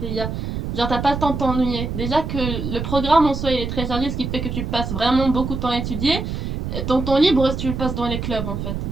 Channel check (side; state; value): right; noise; rumble, 4 dB below the sound